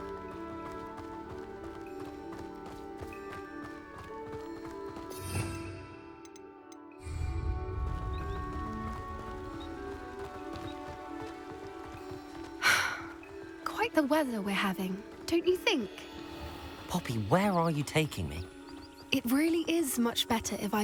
Quite the weather we're having, don't you think? Poppy, where are you taking me? It really is much better if I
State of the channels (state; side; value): identical; both; correlation 1.00